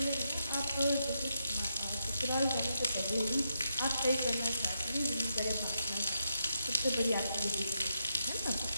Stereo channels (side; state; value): both; inverted; correlation -0.81